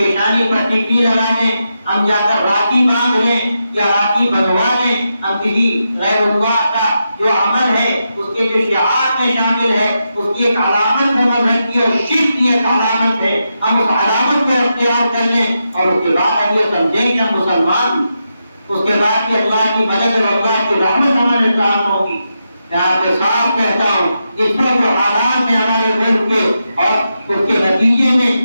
پر ٹیکری لگا دیں، ہم جا کر راکھی باندھ لیں یا راکھی بنوا دیں، ہم کسی غیر اللہ کا جو عمل ہے، اس کے جو شعار میں شامل ہے، اس کی ایک علامت ہے مذہب کی اور شرک کی ایک علامت ہے، ہم اس علامت کو اختیار کر لیں اور اس کے بعد ہم یہ سمجھیں کہ ہم مسلمان، اس کے بعد کہ اللہ کی مدد اور اللہ کی رحمت ہمارے ساتھ ہوگی۔ میں آپ کے صاف کہتا ہوں، اس پر جو حالات ہیں ہمارے ملک کے اور اس کے نتیجے میں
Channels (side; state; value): both; inverted; correlation -0.86